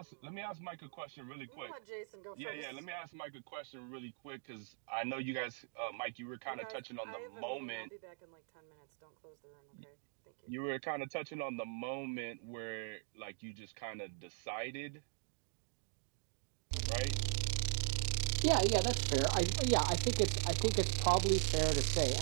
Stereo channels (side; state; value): left; silent; digital silence